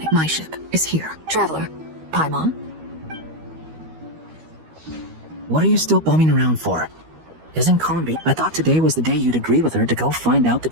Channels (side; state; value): left; late; 13 ms